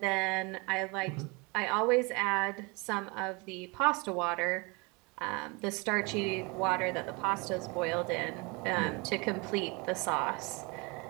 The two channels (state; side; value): quieter; left; 28.4 dB